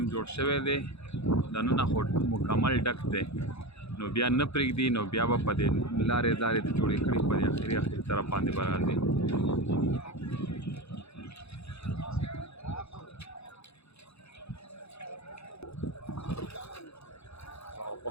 جوړ شوی دی، دننه خو مکمل ډک دی، نو بیا نه پرېږدي، نو بیا به په دې لارې لارې د جوړې کړي په دې اخري طرف باندې به راځي. او په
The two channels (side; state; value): right; late; 0.79 ms